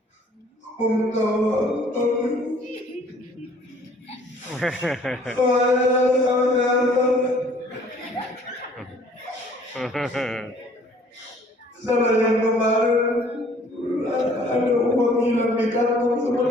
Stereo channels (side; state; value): both; normal; correlation 0.56